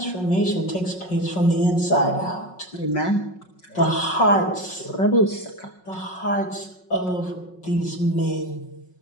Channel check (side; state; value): right; late; 5.5 ms